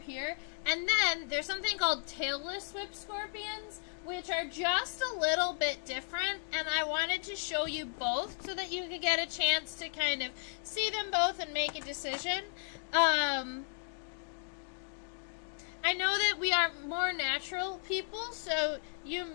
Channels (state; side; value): silent; right; 55 dB below the other